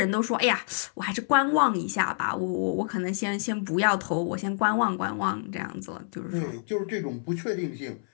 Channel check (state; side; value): silent; right; 58 dB below the other